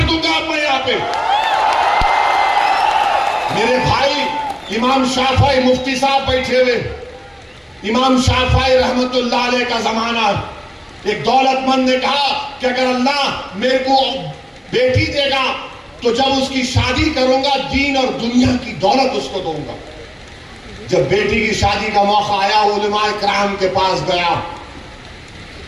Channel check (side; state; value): both; identical; correlation 1.00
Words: दूंगा मैं यहां पे। मेरे भाई इमाम शाफई मुफ्ती साहब बैठे हुए, इमाम शाफई रहमतुल्लाह अलैह का जमाना। एक दौलतमंद ने कहा कि अगर अल्लाह मेरे को बेटी देगा तो जब उसकी शादी करूंगा दीन और दुनिया की दौलत उसको दूंगा। जब बेटी की शादी का मौका आया, उलमाए किराम के पास गया।